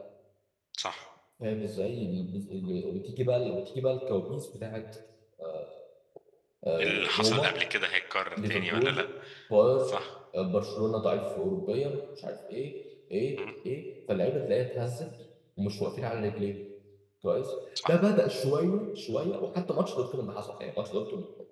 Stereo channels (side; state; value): both; identical; correlation 1.00